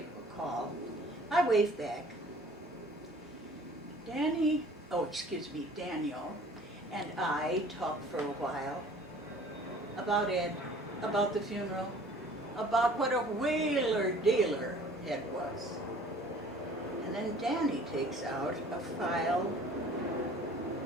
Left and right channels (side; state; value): both; normal; correlation 0.50